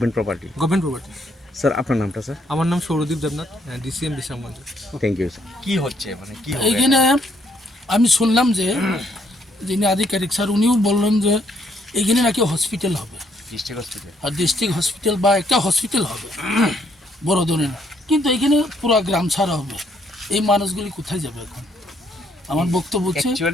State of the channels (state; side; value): normal; both; correlation 0.70